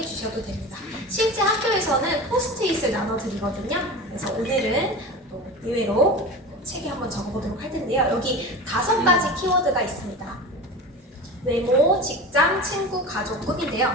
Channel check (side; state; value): both; normal; correlation 0.31